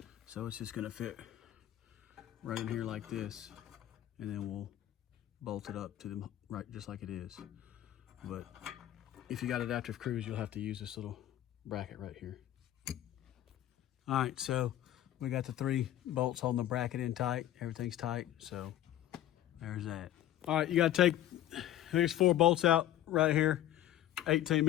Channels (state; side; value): quieter; right; 12.7 dB